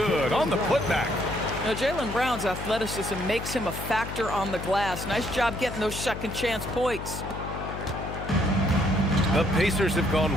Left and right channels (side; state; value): left; noise; hum, 8 dB below the sound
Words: on the putback. Now, Jaylen Brown's athleticism makes him a factor on the glass. Nice job getting those second chance points. The Pacers have